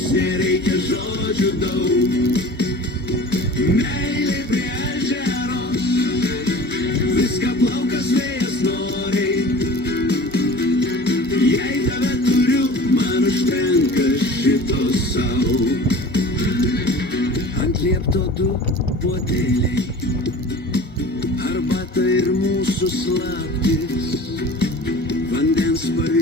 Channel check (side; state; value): both; normal; correlation 0.40